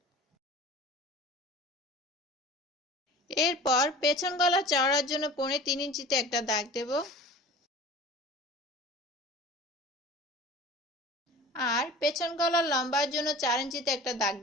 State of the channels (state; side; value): normal; both; correlation 0.40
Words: এরপর পেছন গলা চওড়ার জন্য 3.25 ইঞ্চিতে একটা দাগ দেব আর পেছন গলার লম্বার জন্য 4 ইঞ্চিতে একটা দাগ